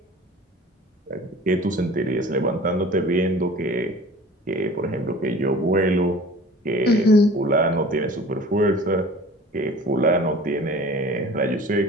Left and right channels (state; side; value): normal; both; correlation 0.43